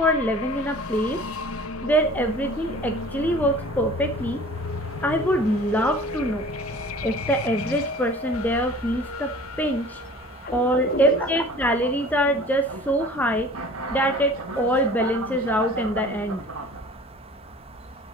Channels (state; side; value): normal; both; correlation 0.45